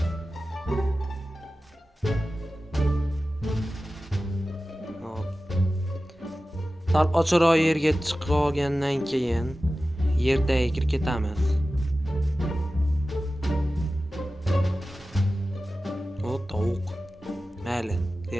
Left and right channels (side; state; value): both; normal; correlation 0.95